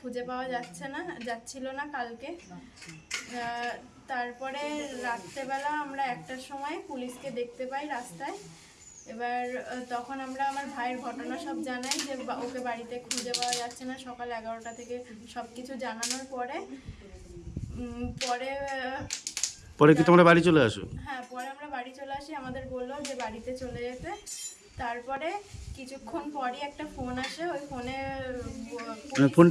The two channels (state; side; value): identical; both; correlation 1.00